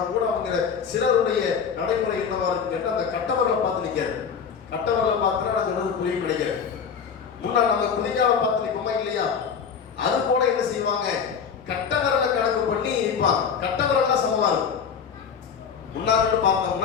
கூட அவங்க சிலருடைய நடைமுறை என்னவா இருக்கு கேட்டால், அந்த கட்டவர்களை பார்த்து நிற்காது. கட்டவர்களை பார்த்துனா நான் சொல்றது புரியும் கிடைக்கிறது. முன்னா நம்ம குதிகாலை பார்த்து நிற்போமா இல்லையா, அது போல என்ன செய்வாங்க? கட்டவர்களை கணக்கு பண்ணி நிற்பாங்க. கட்டவர்கள் சமமா இருக்கும். முன்னாடி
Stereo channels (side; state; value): right; quieter; 6.7 dB